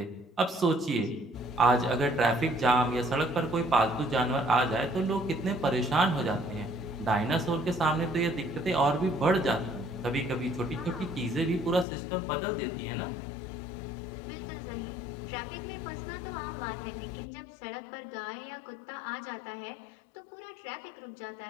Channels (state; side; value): drops out; right; at 11.9 s